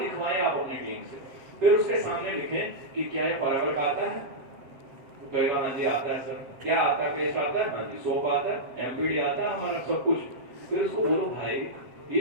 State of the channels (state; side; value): late; left; 7.7 ms